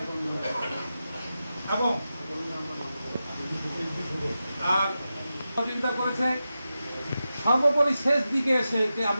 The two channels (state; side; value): inverted; both; correlation -0.91